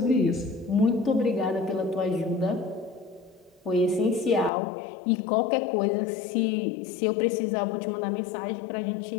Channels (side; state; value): right; drops out; at 4.5 s